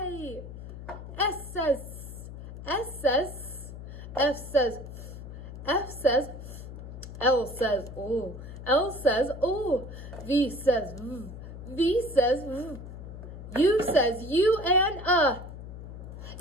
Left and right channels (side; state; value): left; noise; hum, 11 dB below the sound